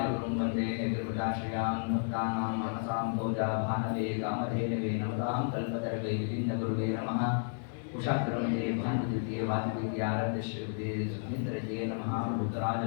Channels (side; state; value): right; silent; digital silence